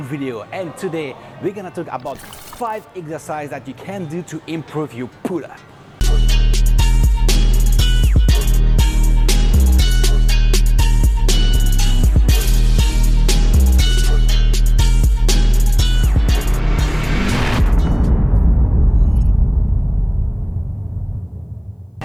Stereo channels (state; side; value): identical; both; correlation 1.00